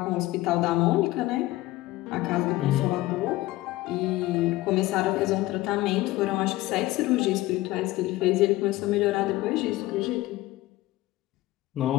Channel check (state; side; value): quieter; right; 17.8 dB